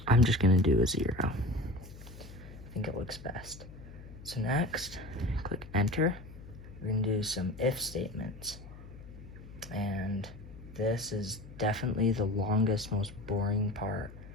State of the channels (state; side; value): noise; left; hum, 16 dB below the sound